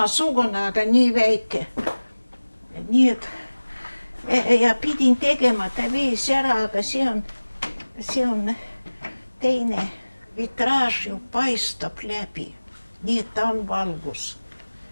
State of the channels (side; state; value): both; inverted; correlation -1.00